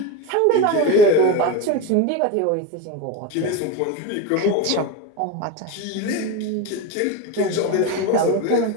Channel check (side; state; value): both; different; correlation 0.06